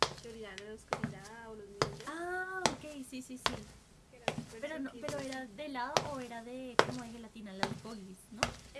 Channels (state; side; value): identical; both; correlation 1.00